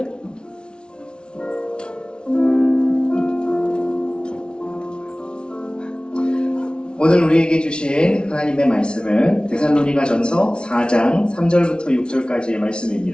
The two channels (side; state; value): right; late; 0.056 ms